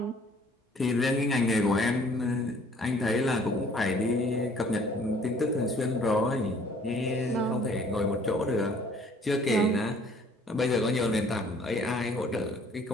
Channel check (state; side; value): normal; both; correlation 0.57